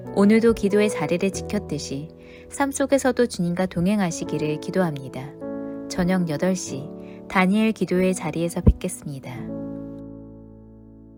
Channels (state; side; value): identical; both; correlation 1.00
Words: 오늘도 기도의 자리를 지켰듯이 삶 속에서도 주님과 동행하시기를 기도합니다. 저녁 8시 다니엘 기도의 자리에서 뵙겠습니다.